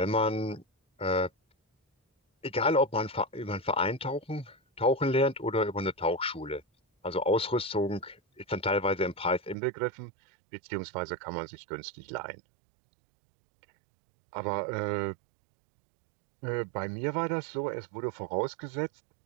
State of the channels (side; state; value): left; drops out; at 9.6 s